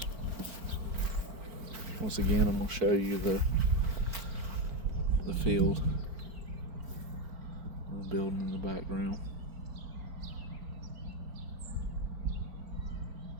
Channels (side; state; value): left; late; 4.4 ms